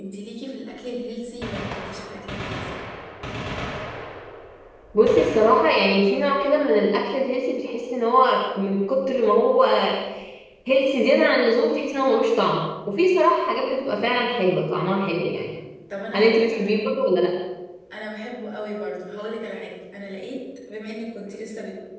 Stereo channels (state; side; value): identical; both; correlation 1.00